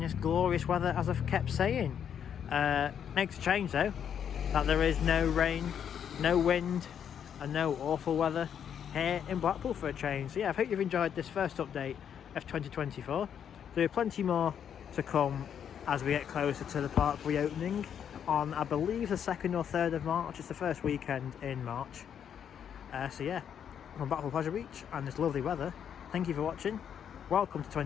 glorious weather, as I've kept saying. Makes a change though, that there is no rain, no wind and no awful weather here in Blackpool for a change. So yeah, I hope you've enjoyed this first update of 2024. There are plenty more to come as we get closer to the park reopening on, I believe, the 2nd or 3rd of March. It's the first weekend in March. So yeah, from Blackpool Pleasure Beach and this lovely weather, thank you for watching, welcome to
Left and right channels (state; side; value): quieter; right; 8.5 dB